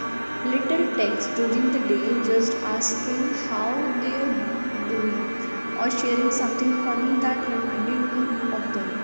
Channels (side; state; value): both; inverted; correlation -1.00